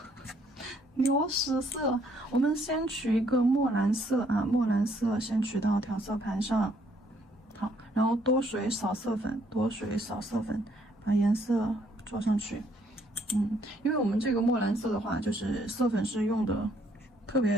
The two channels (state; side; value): normal; both; correlation 0.67